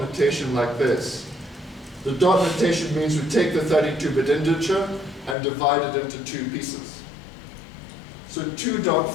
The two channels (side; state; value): right; drops out; at 5.4 s